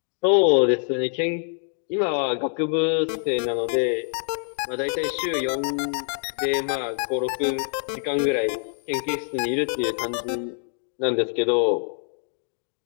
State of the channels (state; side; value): silent; right; 57 dB below the other